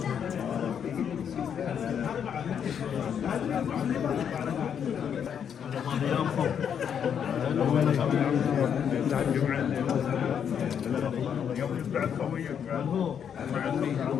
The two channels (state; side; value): quieter; right; 8.1 dB